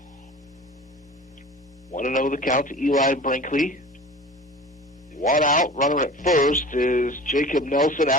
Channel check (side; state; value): both; normal; correlation 0.39